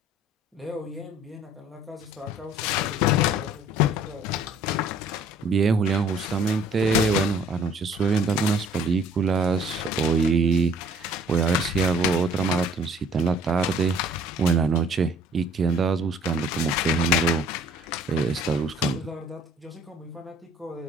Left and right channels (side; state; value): both; normal; correlation 0.56